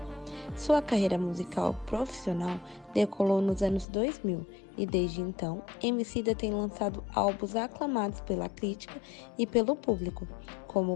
Sua carreira musical profissional decolou nos anos 2000 e desde então, Emicida tem lançado álbuns aclamados pela crítica e pelo público,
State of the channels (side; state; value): right; drops out; at 3.9 s